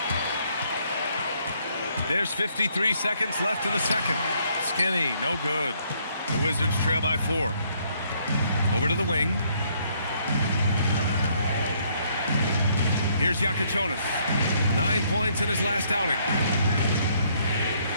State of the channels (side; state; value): both; inverted; correlation -0.68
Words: There's 53 seconds left in the second. Skinny, no good. The Wizards trail by 4. Over to the wing. Here's Yakachonis. 9 points in his last outing.